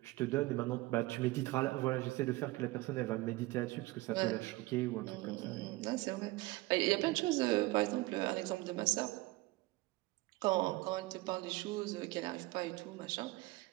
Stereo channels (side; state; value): left; quieter; 20.4 dB